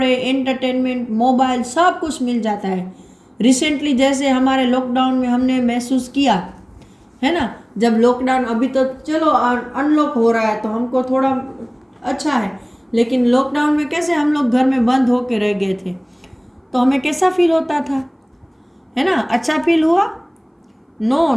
एंटरटेनमेंट, मोबाइल सब कुछ मिल जाता है। रिसेंटली जैसे हमारे लॉकडाउन में हमने महसूस किया है ना, जब लॉकडाउन, अभी तो चलो अनलॉक हो रहा है तो हमको थोड़ा अच्छा है, लेकिन लॉकडाउन में कैसे हम लोग घर में बंद होके रह गए थे तो हमें कैसा फील होता था, है ना। अच्छा फील हुआ? नो,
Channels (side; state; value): both; identical; correlation 1.00